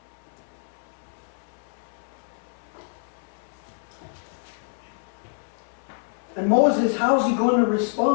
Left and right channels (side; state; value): right; silent; 60 dB below the other